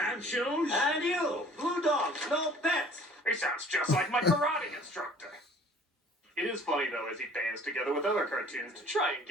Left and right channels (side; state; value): both; normal; correlation 0.51